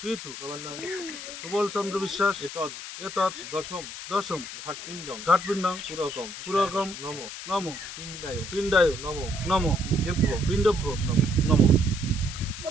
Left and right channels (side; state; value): left; noise; hiss, 10 dB below the sound